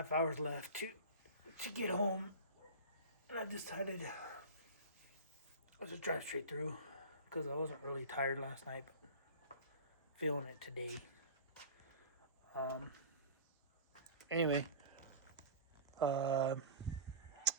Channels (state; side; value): inverted; both; correlation -0.35